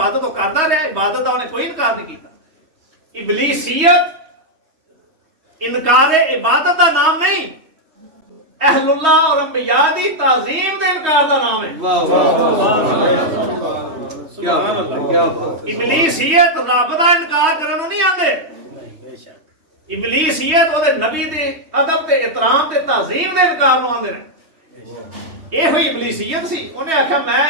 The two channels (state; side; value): late; left; 3.2 ms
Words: ਉਹ ਕਰਦਾ ਰਿਹਾ, ਇਬਾਦਤ ਦਾ ਉਹਨੇ ਕੋਈ ਇਨਕਾਰ ਨਹੀਂ ਕੀਤਾ। ਇਬਲੀਸੀਅਤ ਇਨਕਾਰ ਇਬਾਦਤ ਦਾ ਨਾਮ ਨਹੀਂ, ਅਹਲੁल्लाह और अंबिया ਦੀ ਤਾਜ਼ੀਮ ਦੇ ਇਨਕਾਰ ਦਾ ਨਾਮ ਹੈ। ਵਾਹ ਵਾਹ ਕੀ ਬਾਤ ਹੈ, ਕੀ ਬਾਤ। ਇਬਲੀਸੀਅਤ ਰੱਬ ਦਾ ਇਨਕਾਰ ਕਰਨ ਨੂੰ ਨਹੀਂ ਆਂਦੇ। ਇਬਲੀਸੀਅਤ ਉਹਦੇ ਨਬੀ ਦੇ ਅਦਬ ਤੇ ਇਤਰਾਮ ਤੇ ਤਾਜ਼ੀਮ ਦੇ ਇਨਕਾਰ ਨੂੰ ਆਂਦੇ ਨੇ। ਇਹੋ ਹੀ ਇਬਲੀਸੀਅਤ ਸੀ। ਉਹਨੇ ਆਖਿਆ ਮੈਂ